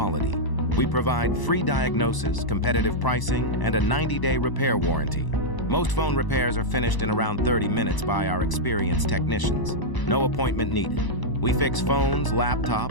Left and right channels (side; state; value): right; late; 1.0 ms